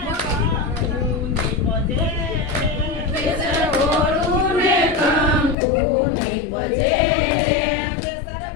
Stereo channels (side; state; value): right; drops out; at 5.6 s